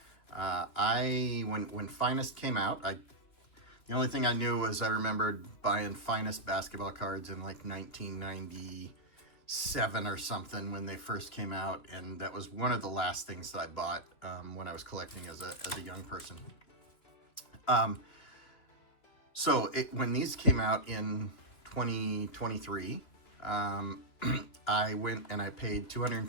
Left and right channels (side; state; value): right; late; 3.2 ms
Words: when Finest came out, the only thing I knew was I remembered buying Finest basketball cards in like 1997 or something when they first came out, and that was one of the last things that I bought when I was collecting as a young person. When these came out in 2023, I went and I paid